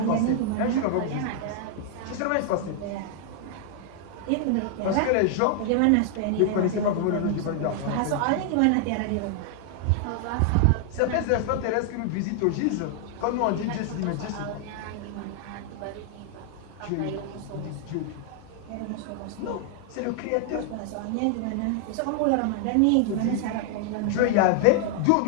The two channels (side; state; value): both; different; correlation 0.00